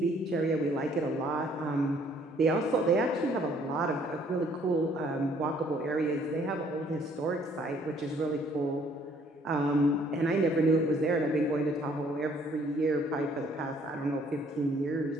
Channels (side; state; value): both; normal; correlation 0.62